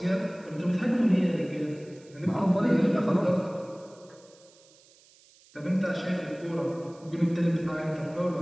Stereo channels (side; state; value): right; noise; hiss, 28 dB below the sound